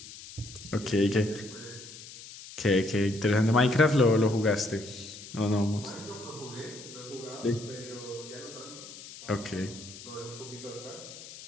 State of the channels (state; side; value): noise; left; hiss, 15 dB below the sound